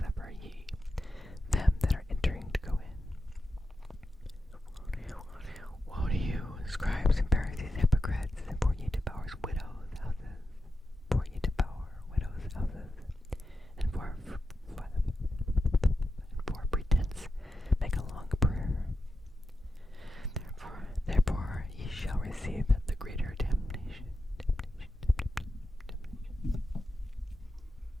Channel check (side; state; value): both; normal; correlation 0.90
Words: ye them that are entering to go in. Woe to you, scribes and Pharisees, hypocrites, for ye devour widows' houses. For ye devour widows' houses, and for pretense make a long prayer. Therefore ye shall receive the greater damnation.